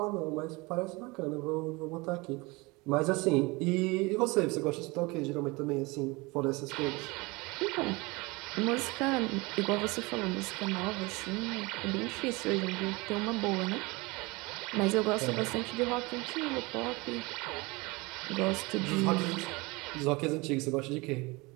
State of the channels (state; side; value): quieter; left; 24.8 dB